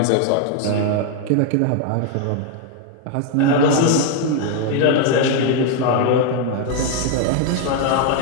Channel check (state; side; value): different; both; correlation 0.01